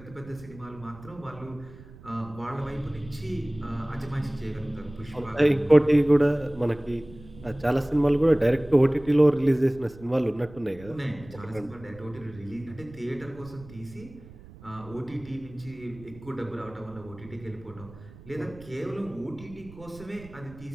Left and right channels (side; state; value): right; noise; rumble, 19 dB below the sound